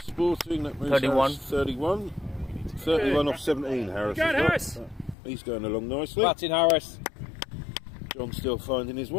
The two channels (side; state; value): right; drops out; at 5.2 s